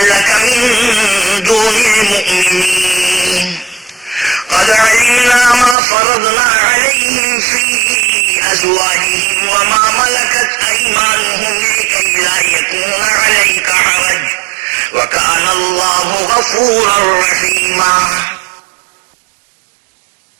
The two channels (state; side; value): drops out; left; at 5.8 s